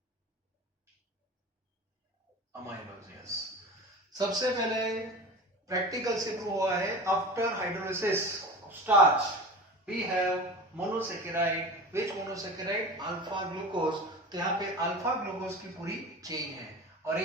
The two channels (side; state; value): both; normal; correlation 0.33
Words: amylose, yes, सबसे पहले प्रैक्टिकल से प्रूव हुआ है, after hydrolysis of starch we have monosaccharide, which monosaccharide, alpha glucose, तो यहाँ पे अल्फा ग्लूकोज की पूरी चेन है और